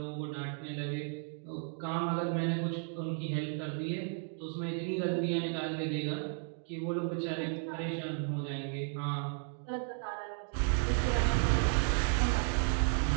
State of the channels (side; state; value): left; silent; 55 dB below the other